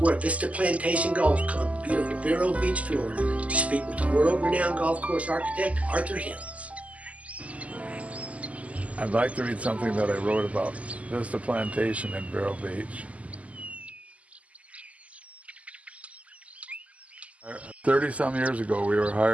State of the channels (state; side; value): late; left; 0.068 ms